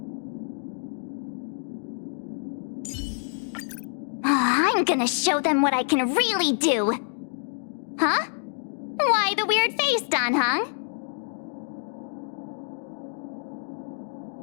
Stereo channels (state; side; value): silent; right; digital silence